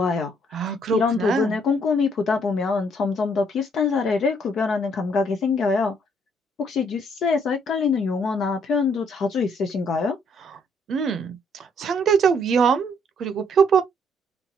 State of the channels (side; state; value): both; normal; correlation 0.67